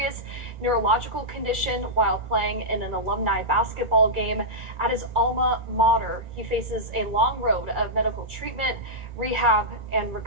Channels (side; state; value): left; late; 2.3 ms